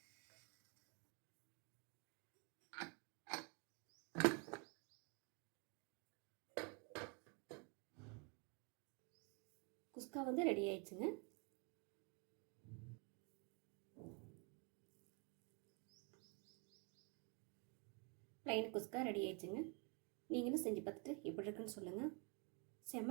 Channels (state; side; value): quieter; left; 34.7 dB